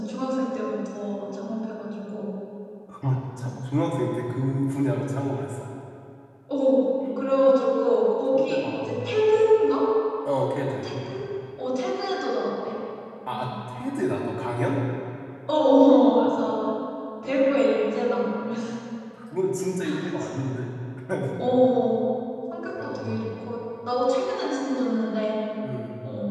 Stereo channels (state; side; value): identical; both; correlation 1.00